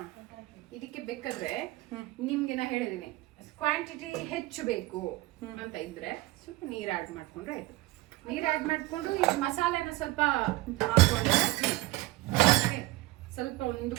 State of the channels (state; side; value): quieter; left; 19.3 dB